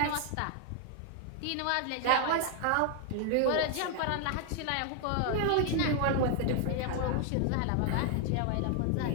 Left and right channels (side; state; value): both; different; correlation 0.00